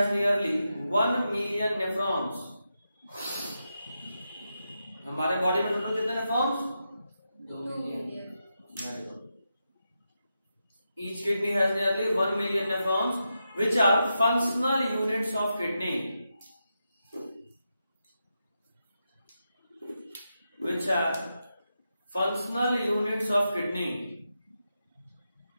nearly 1 million nephrons. हमारे बॉडी में टोटल कितने nephrons? 2 million. Each kidney has nearly 1 million nephrons, which are functional units of kidney. Which are functional units of kidney.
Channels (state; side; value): inverted; both; correlation -0.87